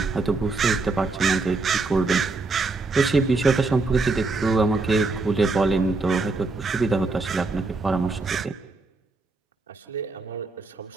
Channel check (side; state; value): left; quieter; 3.6 dB